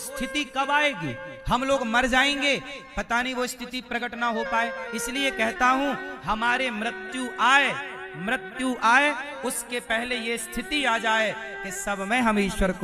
कब आएगी? हम लोग मर जाएंगे, पता नहीं वो स्थिति प्रकट ना हो पाए। इसलिए कहता हूं हमारे मृत्यु आए मृत्यु आए उसके पहले ये स्थिति आ जाए कि सब में हम ईश्वर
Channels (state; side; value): identical; both; correlation 1.00